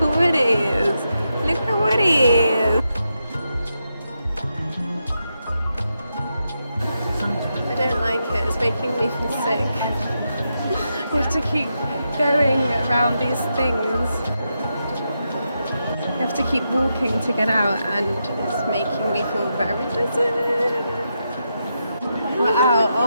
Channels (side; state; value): both; inverted; correlation -0.85